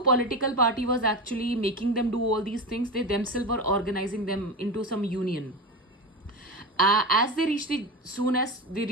political party was actually making them do all these things. They themselves were organizing them into some union. Soon as they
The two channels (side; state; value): both; normal; correlation 0.22